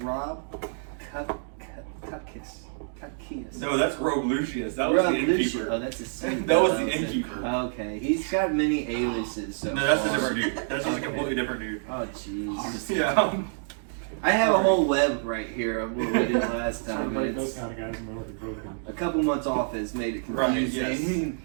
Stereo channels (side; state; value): left; silent; digital silence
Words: Cuckius. No, that's Rogue Lucius. That was the innkeeper. Oh, that's a secret. That was the innkeeper. Okay, he's got many aliases. So no, that's a different dude. That's just a completely different dude. Oh, jeez. Yeah. I have a whole web right here of what we did last time. Those kind of guys know broken. A couple months off has made it confusing.